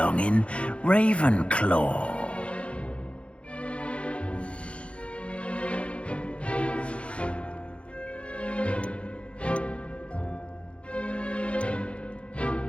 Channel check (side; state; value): right; late; 0.060 ms